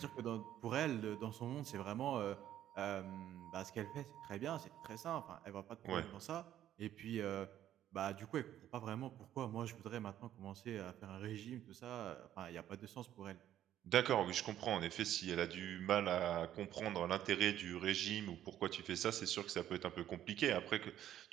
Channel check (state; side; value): quieter; left; 11.7 dB